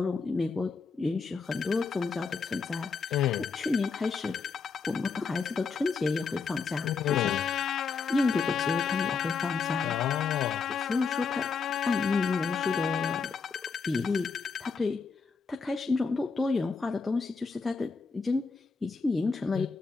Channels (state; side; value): quieter; right; 5.1 dB